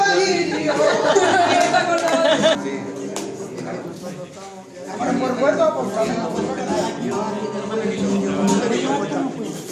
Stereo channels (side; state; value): both; identical; correlation 1.00